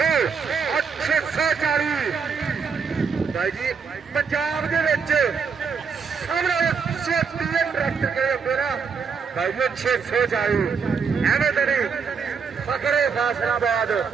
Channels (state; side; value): quieter; left; 5.8 dB